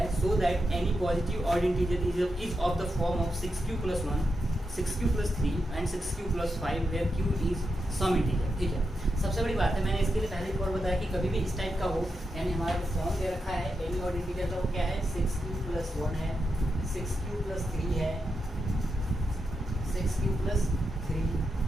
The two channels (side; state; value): both; normal; correlation 0.86